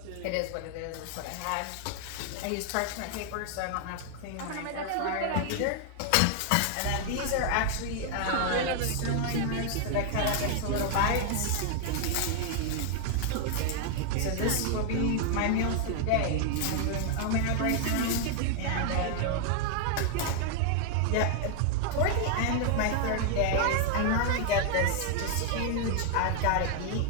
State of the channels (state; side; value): different; both; correlation 0.00